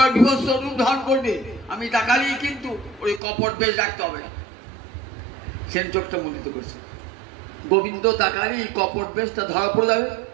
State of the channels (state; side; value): drops out; left; at 3.2 s